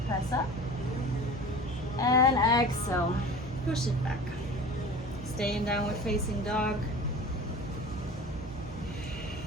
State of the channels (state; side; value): normal; both; correlation 0.38